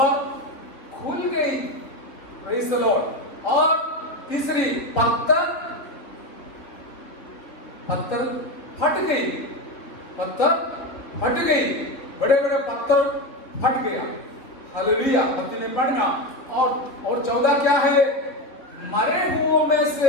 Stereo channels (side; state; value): right; late; 3.6 ms